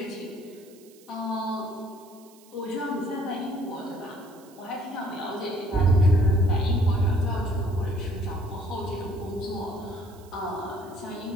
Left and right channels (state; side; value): noise; right; hiss, 26 dB below the sound